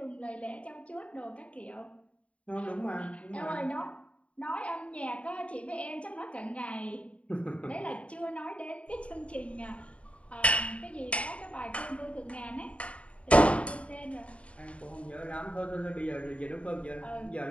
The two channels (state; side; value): late; right; 0.063 ms